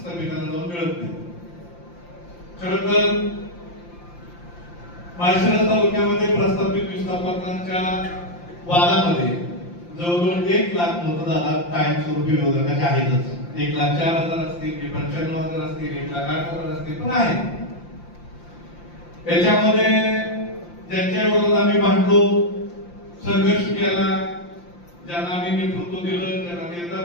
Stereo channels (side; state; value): right; late; 5.8 ms